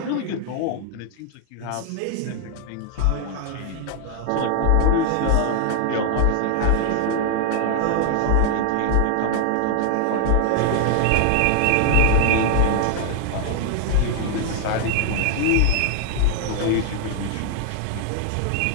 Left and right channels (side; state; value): both; different; correlation 0.00